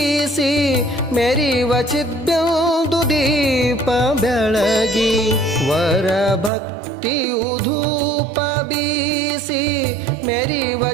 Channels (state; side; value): drops out; left; at 6.5 s